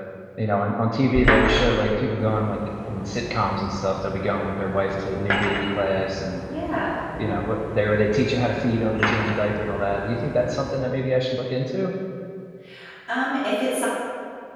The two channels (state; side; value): identical; both; correlation 1.00